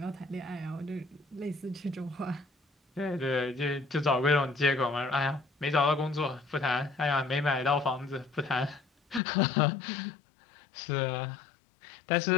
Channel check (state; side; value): drops out; right; at 9.2 s